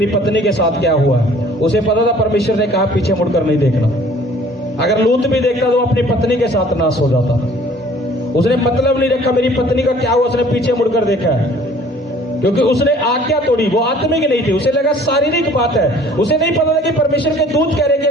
पत्नी के साथ क्या हुआ। उसे पता था परमेश्वर ने कहा पीछे मुड़कर नहीं देखना। अगर लूत भी देखता तो अपनी पत्नी के साथ नाश हो जाता। उसने मतलब नहीं रखा मेरी पत्नी का क्या हुआ, उसने पीछे मुड़कर देखा है, क्योंकि उसने आज्ञा तोड़ी। वो आत्मिक नहीं थी, उसे लगा शारीरिक बात है। उसे नहीं पता था कि परमेश्वर के दूत कह रहे कि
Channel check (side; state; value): both; normal; correlation 0.53